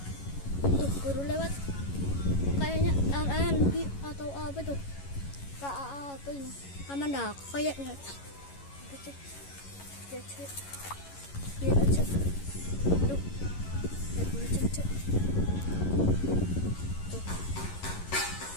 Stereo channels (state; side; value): late; right; 11 ms